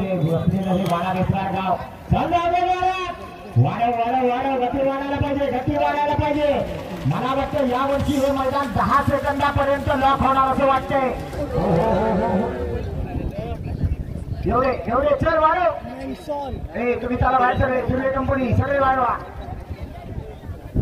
बसलेलं हे वाडा रेसरा गाव. वाढव गती वाढायला पाहिजे. मला वाटतं यावर्षी हे मैदान 10 सेकंदापर्यंत लॉक होणार असं वाटतंय. एवढे चल वाढव. तुम्ही त्याला बाहेर सगळे हिरवे कंपनी सगळे वाढवा.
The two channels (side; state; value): both; identical; correlation 1.00